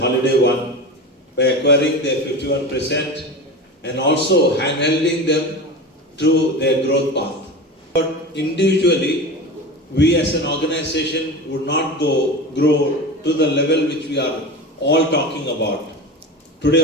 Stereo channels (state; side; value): normal; both; correlation 0.29